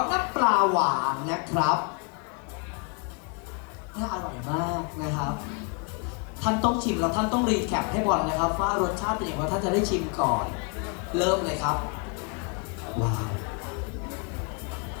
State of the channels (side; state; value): right; quieter; 36.2 dB